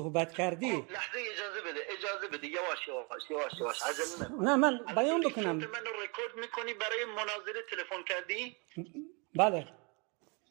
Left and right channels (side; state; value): left; quieter; 32.1 dB